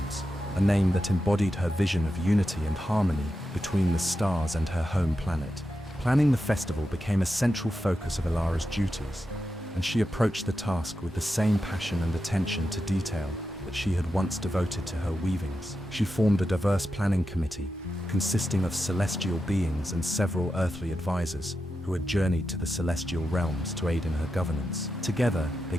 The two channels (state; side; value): normal; both; correlation 0.89